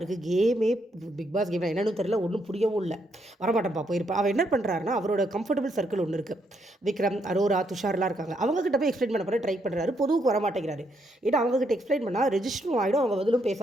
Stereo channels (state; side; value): normal; both; correlation 0.75